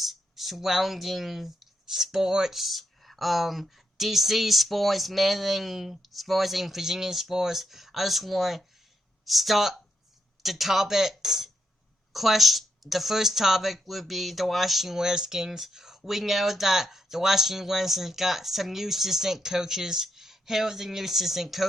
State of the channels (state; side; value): normal; both; correlation 0.82